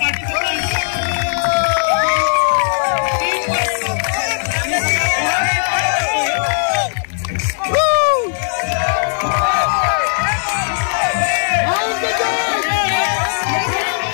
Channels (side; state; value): right; silent; digital silence